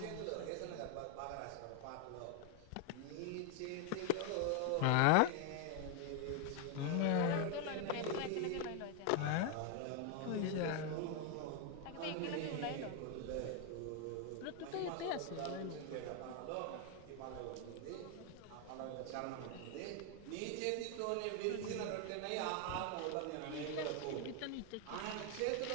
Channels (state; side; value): different; both; correlation 0.01